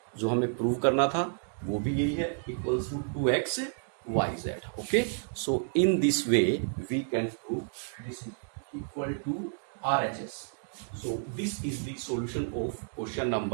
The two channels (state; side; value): silent; left; digital silence